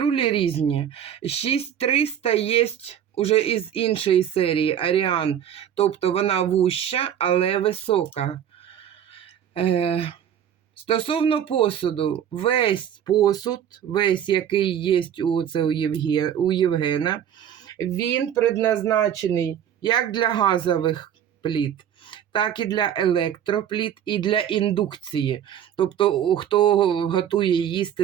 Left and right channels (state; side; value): quieter; left; 9.6 dB